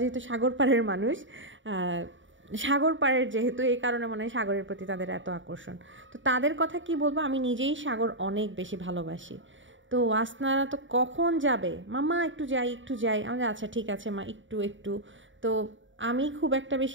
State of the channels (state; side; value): late; left; 0.55 ms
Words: যেহেতু সাগর পাড়ের মানুষ, সাগর পাড়ের যেহেতু, এই কারণে মনে হয় সাগরের প্রতি তাদের এত আকর্ষণ। তো তাদের কথা কি বলবো, আমি নিজেই সাগর অনেক বেশি ভালোবাসি। তো ওয়াসনারা তো কখন যাবে, মাম্মা একটু যাই একটু যাই, আমাদের আচ্ছা ঠিক আছে মা একটু একটু। তো আমি খুব একটা